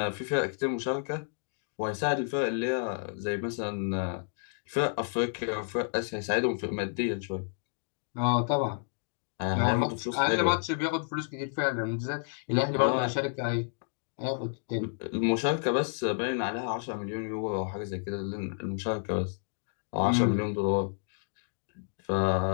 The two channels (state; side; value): silent; right; digital silence